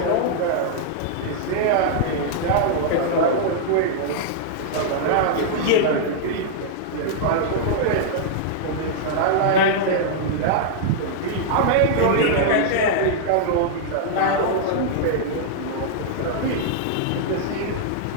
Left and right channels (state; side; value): different; both; correlation -0.01